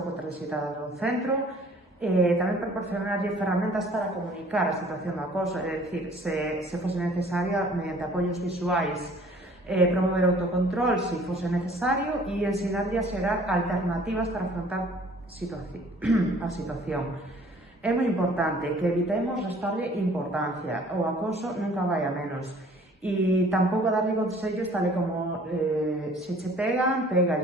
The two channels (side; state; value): both; normal; correlation 0.54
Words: transitadas do centro, tamén proporcionarlle ferramentas para comunicar a situación do acoso, é dicir, se fose necesaria, mediante apoios visuais, promover autocontrol se fose necesario e ensinarlle a xerar alternativas para afrontar a situación. É moi importante que evitemos restarlle importancia, o acoso nunca vai a menos, e tampouco darlle consellos tal como se che pegan,